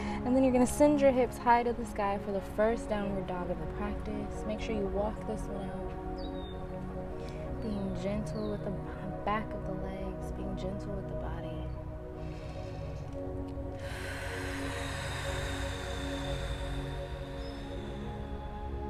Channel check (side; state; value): both; identical; correlation 1.00